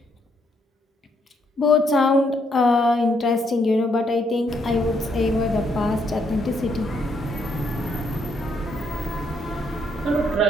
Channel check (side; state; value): both; normal; correlation 0.73